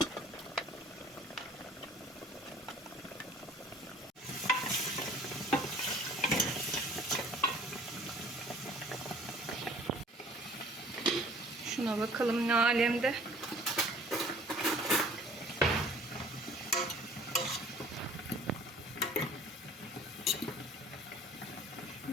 Şuna bakalım ne alemde.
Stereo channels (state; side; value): normal; both; correlation 0.52